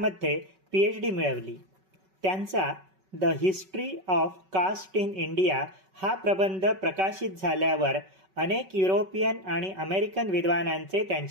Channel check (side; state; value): left; late; 5.3 ms